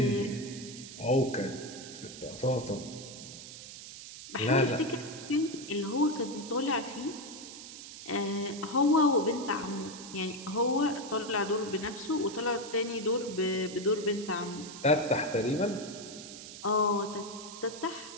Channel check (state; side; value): noise; right; hiss, 13 dB below the sound